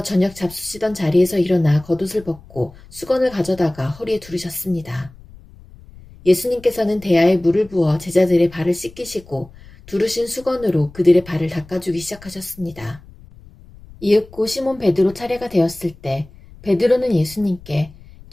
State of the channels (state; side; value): noise; left; rumble, 21 dB below the sound